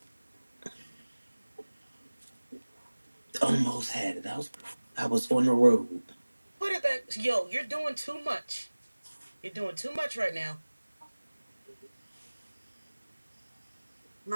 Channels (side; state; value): both; inverted; correlation -1.00